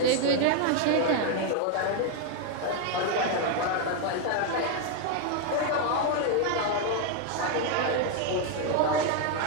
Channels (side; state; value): both; different; correlation 0.01